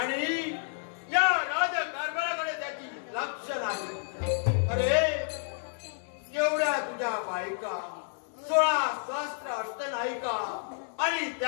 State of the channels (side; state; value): right; silent; 58 dB below the other